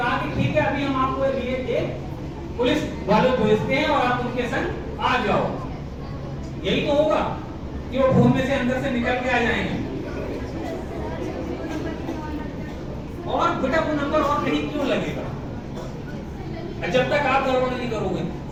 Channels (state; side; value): identical; both; correlation 1.00